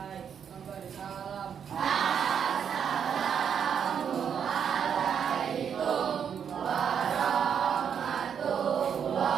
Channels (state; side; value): quieter; left; 7.8 dB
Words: Memberi salam. Assalamualaikum